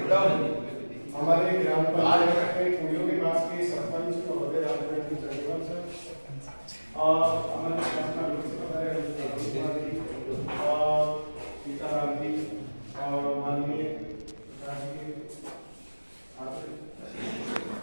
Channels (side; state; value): both; inverted; correlation -1.00